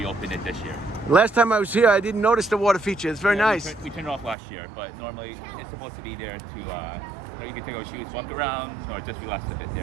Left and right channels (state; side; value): drops out; left; at 4.4 s